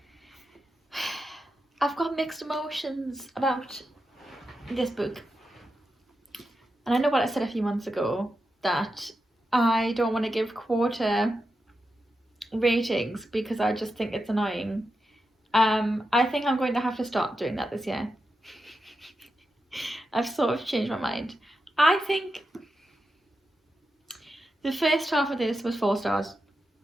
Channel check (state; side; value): normal; both; correlation 0.88